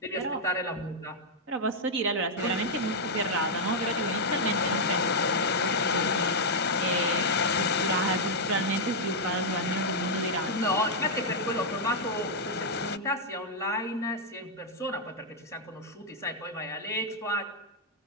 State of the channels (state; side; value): normal; both; correlation -0.04